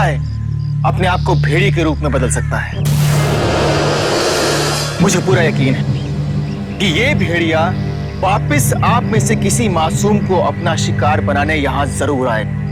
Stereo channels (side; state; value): both; identical; correlation 1.00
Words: अपने आप को भेड़िए के रूप में बदल सकता है। मुझे पूरा यकीन है कि ये भेड़िया वापस आप में से किसी मासूम को अपना शिकार बनाने यहां जरूर आए।